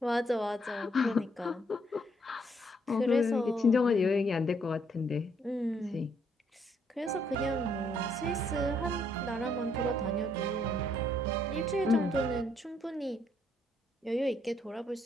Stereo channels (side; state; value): both; normal; correlation 0.71